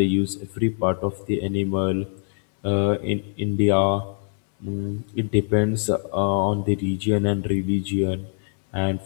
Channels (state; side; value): silent; right; 63 dB below the other